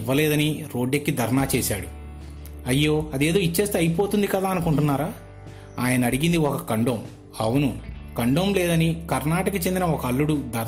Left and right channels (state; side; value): identical; both; correlation 1.00